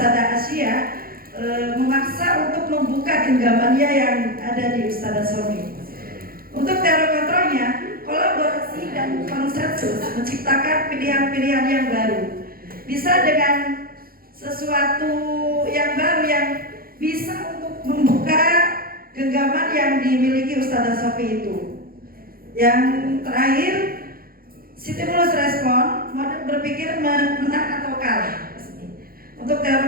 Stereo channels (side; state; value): left; late; 0.43 ms